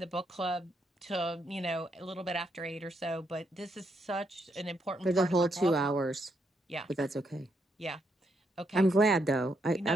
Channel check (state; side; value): normal; both; correlation 0.77